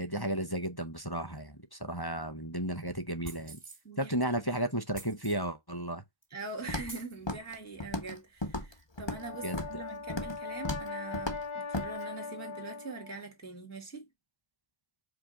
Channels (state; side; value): late; right; 1.1 ms